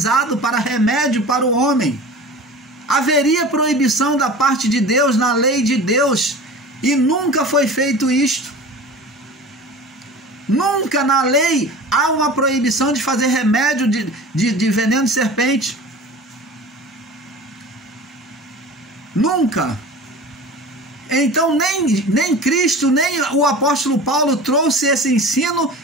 para remédio para o homem. Haveria proibição da parte de Deus, na lei de Deus, e nunca foi feito isto. Nunca na lei há uma proibição de fazer remédio de veneno de serpente. Nunca. Então nem Cristo, nem o apóstolo Paulo trouxe esse ensino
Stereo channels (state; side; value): normal; both; correlation 0.37